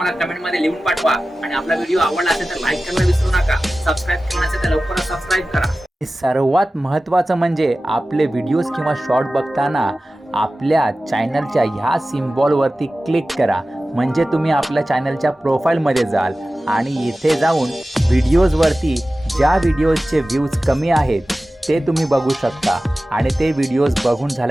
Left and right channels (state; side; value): normal; both; correlation 0.96